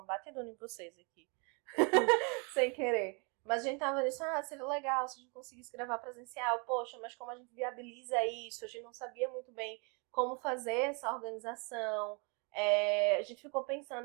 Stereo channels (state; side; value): quieter; left; 34.3 dB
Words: batidona em vocês aqui. Sem querer. Mas a gente tava nisso, seria legal se a gente conseguisse gravar presencial. Poxa, mas como a gente viabiliza isso? A gente não sabia muito bem como fazer essa organização. A gente ficou